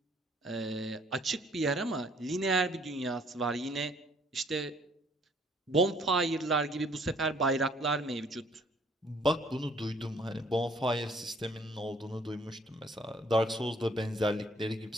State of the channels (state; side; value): normal; both; correlation 0.61